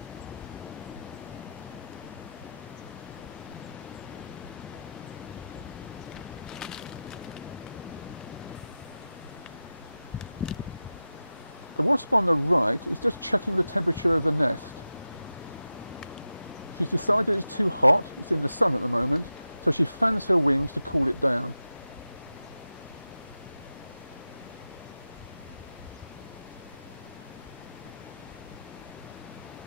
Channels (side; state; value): both; inverted; correlation -0.92